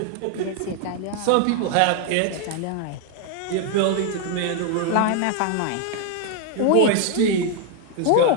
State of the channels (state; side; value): different; both; correlation 0.00